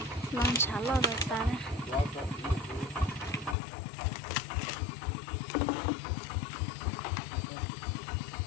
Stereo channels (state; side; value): drops out; right; at 3.6 s